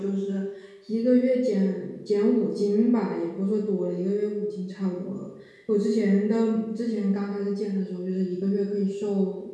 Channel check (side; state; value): both; identical; correlation 1.00